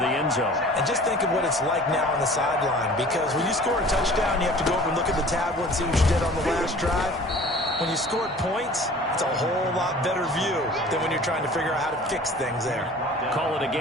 end zone. And just think of what it's like now on the sideline, because when you score a touchdown, you have to go over and look at the tablet and see what you did on the last drive. When you scored points, it's a whole lot better view than when you're trying to figure out how to fix things there. Call it a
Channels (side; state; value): both; normal; correlation 0.46